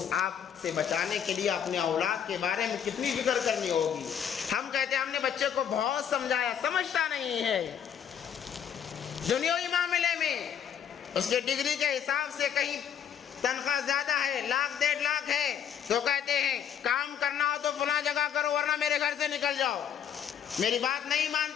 آگ سے بچانے کے لیے اپنے اولاد کے بارے میں کتنی فکر کرنی ہوگی۔ ہم کہتے ہیں ہم نے بچے کو بہت سمجھایا، سمجھتا نہیں ہے۔ دنیاوی معاملے میں اس کے ڈگری کے حساب سے کہیں تنخواہ زیادہ ہے، 1,00,000 1.5 لاکھ ہے، تو کہتے ہیں کام کرنا ہو تو فلاں جگہ کرو ورنہ میرے گھر سے نکل جاؤ، میری بات نہیں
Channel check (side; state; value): right; quieter; 8.6 dB